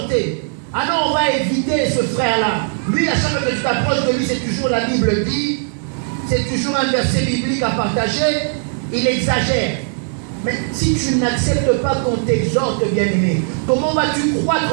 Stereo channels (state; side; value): silent; left; 62 dB below the other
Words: Ah non, on va éviter ce frère-là. Lui, à chaque fois que tu t'approches de lui, c'est toujours la Bible dit, c'est toujours un verset biblique à partager, il exagère. Mais si tu n'acceptes pas qu'on t'exhorte, bien-aimé, comment vas-tu